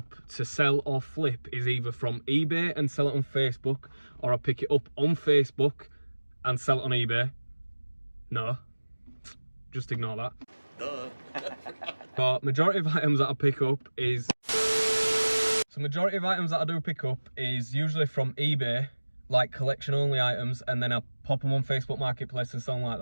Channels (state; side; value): inverted; both; correlation -1.00